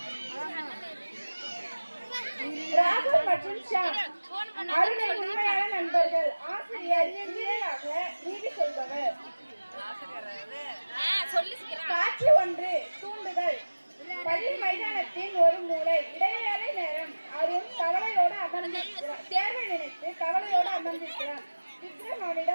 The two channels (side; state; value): both; inverted; correlation -1.00